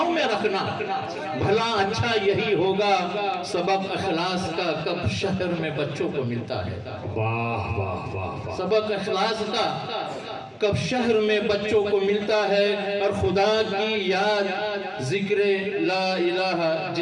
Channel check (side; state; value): both; identical; correlation 1.00